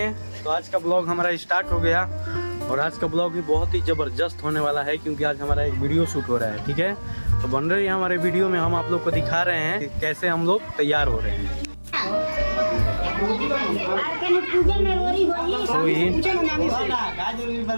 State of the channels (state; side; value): inverted; both; correlation -1.00